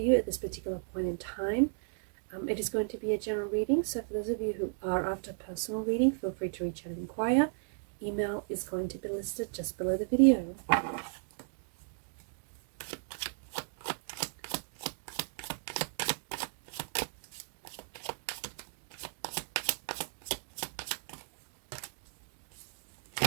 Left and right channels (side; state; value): left; silent; digital silence